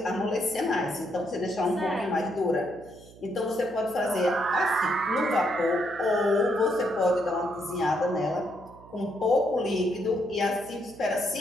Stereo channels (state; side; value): noise; right; hum, 21 dB below the sound